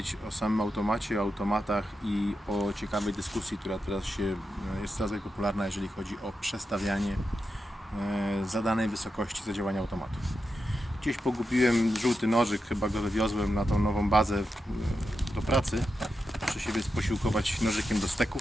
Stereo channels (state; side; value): normal; both; correlation 0.88